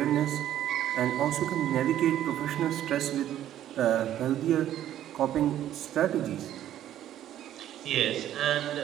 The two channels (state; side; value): quieter; left; 11.9 dB